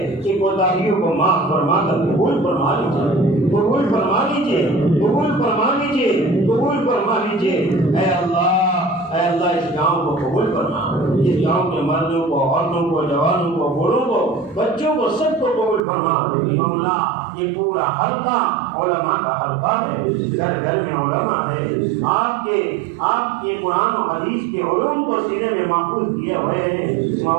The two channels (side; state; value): left; drops out; at 15.9 s